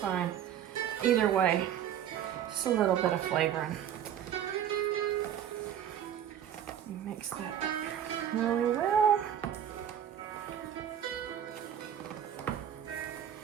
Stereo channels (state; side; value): quieter; left; 9.8 dB